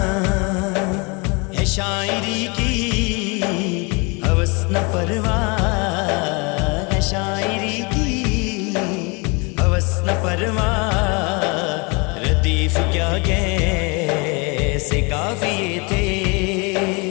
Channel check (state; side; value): quieter; right; 29.9 dB